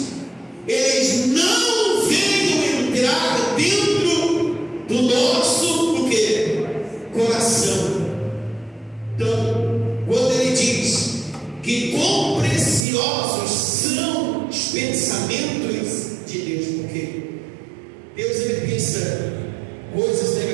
eles não venham entrar dentro do nosso o quê? Coração. Então, quando ele diz que quão preciosos são os pensamentos de Deus, porque Deus ele pensa coisas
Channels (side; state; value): left; drops out; at 12.9 s